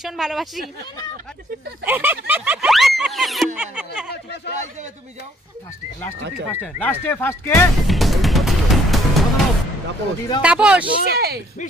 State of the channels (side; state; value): both; normal; correlation 0.64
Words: ভালোবাসি। লাস্টে ফার্স্ট কে? তাপস।